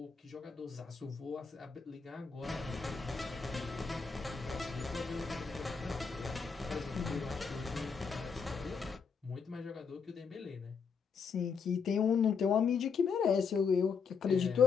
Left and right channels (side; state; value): right; quieter; 5.8 dB